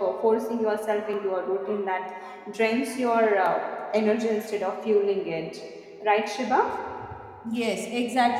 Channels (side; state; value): both; identical; correlation 1.00